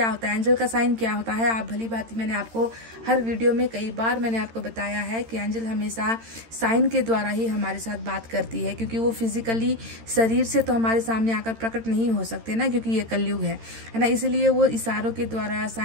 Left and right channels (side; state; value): left; late; 13 ms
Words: होता है एंजल का साइन, क्या होता है। आप भली बात, मैंने आपको हर वीडियो में कई बार मैंने आपको बताया है कि एंजल हमेशा साइन के द्वारा ही हमारे साथ बात करती है, क्योंकि वो फिजिकली शरीर से तो हमारे सामने आकर प्रकट नहीं हो सकते ना, क्योंकि ये कलयुग है ना। इसलिए वो इशारों के द्वारा,